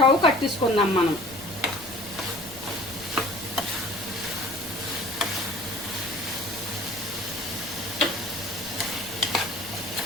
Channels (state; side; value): noise; left; rumble, 19 dB below the sound